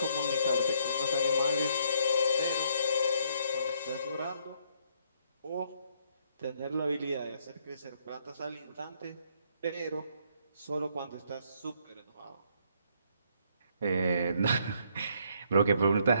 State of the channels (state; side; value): inverted; both; correlation -0.69